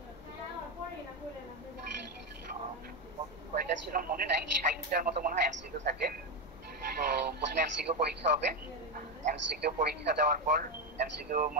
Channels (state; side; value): normal; both; correlation 0.10